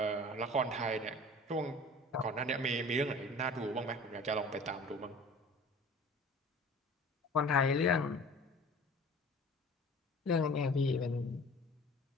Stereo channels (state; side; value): normal; both; correlation 0.44